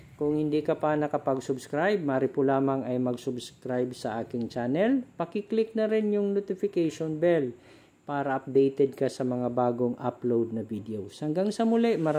Kung hindi ka pa nakapag-subscribe, maaari po lamang ay mag-subscribe sa aking channel. Paki-click na rin yung notification bell para updated ka sa mga bagong upload na videos. Hanggang sa muli,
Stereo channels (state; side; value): identical; both; correlation 1.00